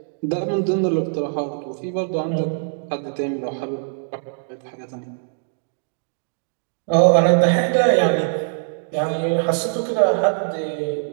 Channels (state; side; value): silent; left; digital silence